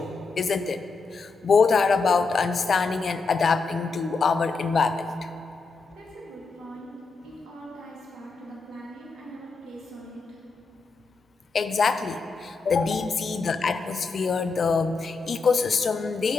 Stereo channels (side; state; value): right; quieter; 4.3 dB